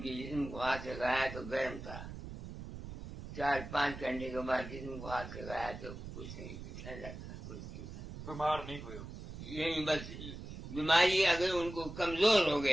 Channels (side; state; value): right; noise; rumble, 10 dB below the sound